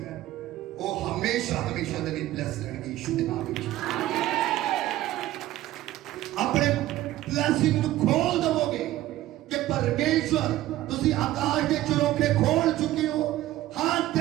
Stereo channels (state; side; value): quieter; left; 15.1 dB